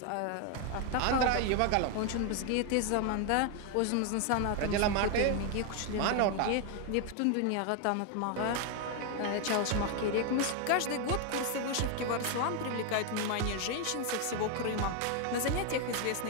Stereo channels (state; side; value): different; both; correlation 0.01